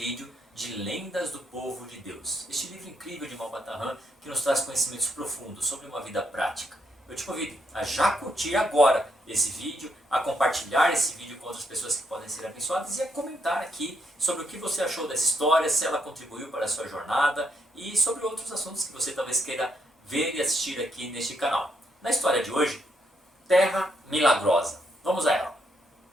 de Lendas do Povo de Deus. Este livro incrível de Malbata Han que nos traz conhecimentos profundos sobre uma vida prática. Eu te convido a já curtir agora esse vídeo, a compartilhar esse vídeo com outras pessoas que podem ser abençoadas e a comentar aqui sobre o que você achou dessa história, se ela contribuiu para a sua jornada e sobre outros assuntos que você talvez queira ver e assistir aqui neste canal. Na história de hoje, Terra Milagrosa. Vamos a ela.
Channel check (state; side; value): normal; both; correlation 0.76